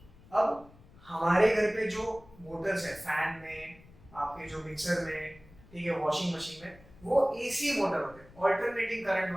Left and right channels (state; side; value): noise; left; rumble, 23 dB below the sound